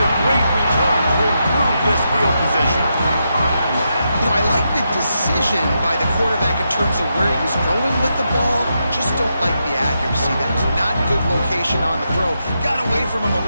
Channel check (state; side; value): inverted; both; correlation -0.84